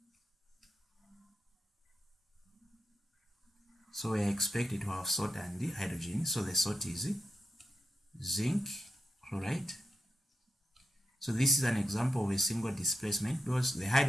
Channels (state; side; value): normal; both; correlation 0.86